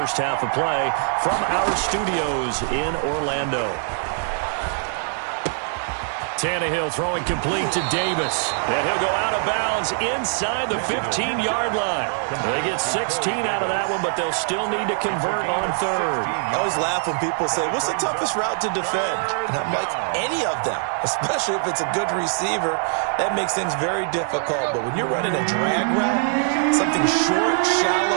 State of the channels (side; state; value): left; silent; 64 dB below the other